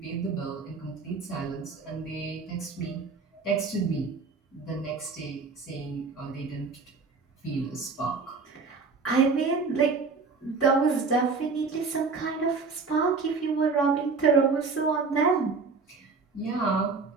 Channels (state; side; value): quieter; left; 4.5 dB